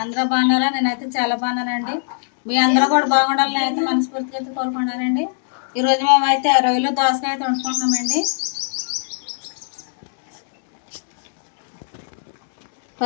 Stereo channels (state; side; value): silent; right; 66 dB below the other